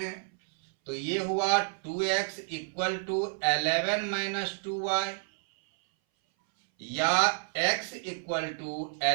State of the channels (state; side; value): silent; left; 58 dB below the other